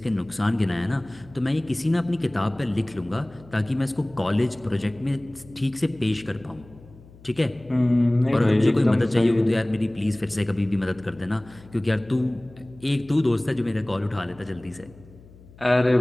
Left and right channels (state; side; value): noise; left; hum, 23 dB below the sound